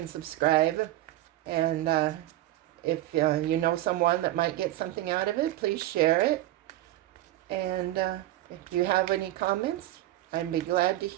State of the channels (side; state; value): left; quieter; 15.2 dB